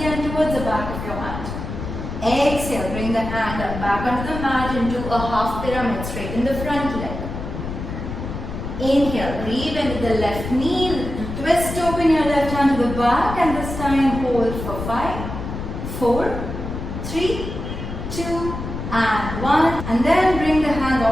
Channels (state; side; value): noise; left; rumble, 7 dB below the sound